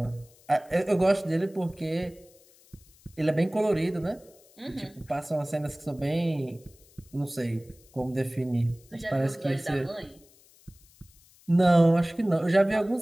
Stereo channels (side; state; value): left; noise; hiss, 28 dB below the sound